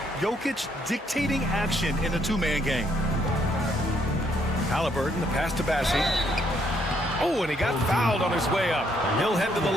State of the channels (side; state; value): both; normal; correlation 0.70